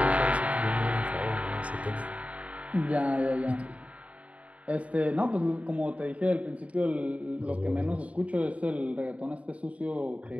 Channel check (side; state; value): left; late; 0.066 ms